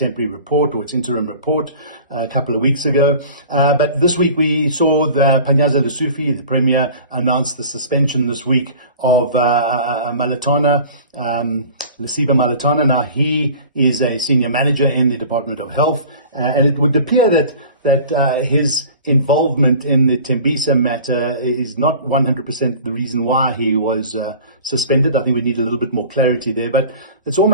report or its interim report a couple of weeks ago. But this week we saw the Panyaza Lesufi, the Premier, announce the suspension this week of Malatana, Lesiba Malatana. Now, he is a senior manager in the Department of Health, and it would appear that his involvement in the Tembisa matter is not 100% the reason why he was suspended. I think we need a little bit more clarity there, but it's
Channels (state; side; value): inverted; both; correlation -0.42